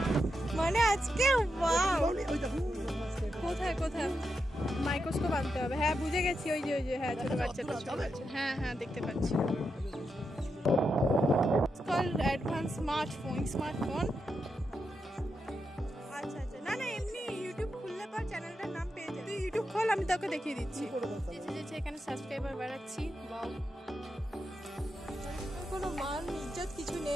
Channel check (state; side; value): normal; both; correlation 0.85